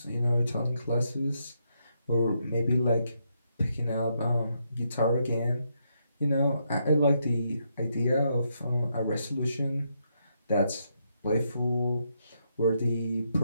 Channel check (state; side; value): inverted; both; correlation -0.78